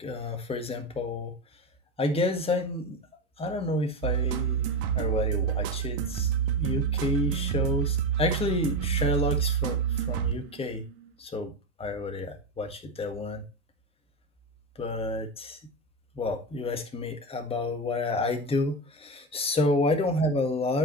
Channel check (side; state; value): both; normal; correlation 0.17